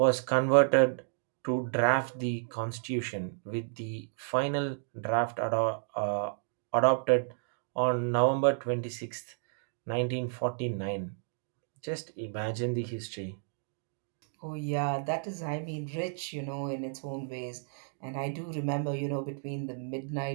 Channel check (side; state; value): left; silent; digital silence